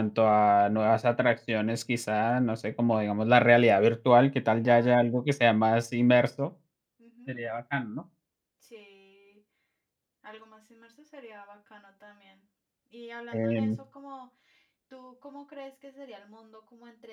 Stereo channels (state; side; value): identical; both; correlation 1.00